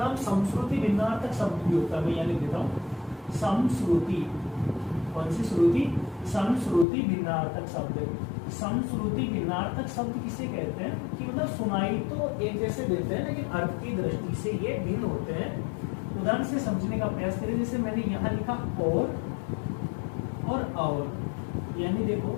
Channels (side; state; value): right; drops out; at 6.9 s